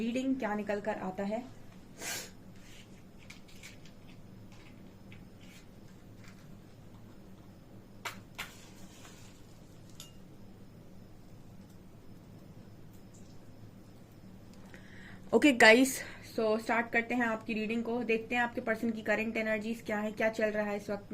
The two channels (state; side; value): identical; both; correlation 1.00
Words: क्या निकल कर आता है? ओके गाइस, सो स्टार्ट करते हैं आपकी रीडिंग को। देखते हैं आपके पर्सन की करंट एनर्जीज क्या है, क्या चल रहा है इस वक्त